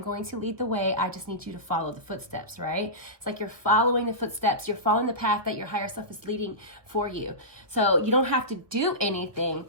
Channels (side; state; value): left; late; 1.0 ms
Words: going to lead the way. I just need you to follow the footsteps, right? It's like you're following the footsteps. You're following the path that your higher self is leading for you. So you don't have to do anything.